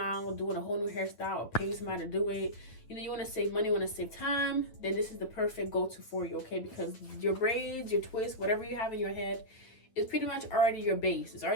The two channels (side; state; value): right; late; 9.1 ms